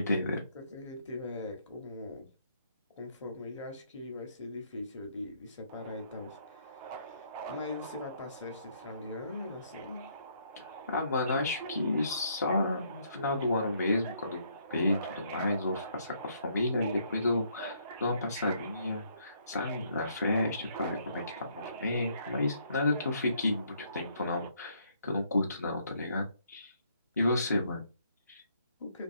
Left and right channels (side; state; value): both; inverted; correlation -0.69